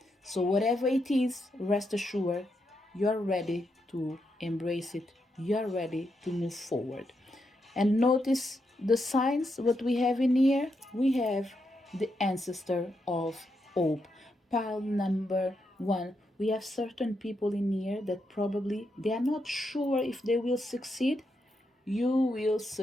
So whatever it is, rest assured, you're ready to embrace it. You're ready to move forward. And notice the signs, what we have in here. We have the ancestor of hope. Pile number one. We have certain people in here that probably they are not sure if they will succeed. You will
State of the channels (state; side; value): normal; both; correlation 0.82